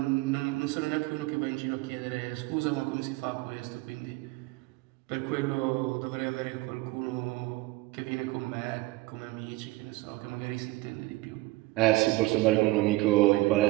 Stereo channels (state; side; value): quieter; left; 20.2 dB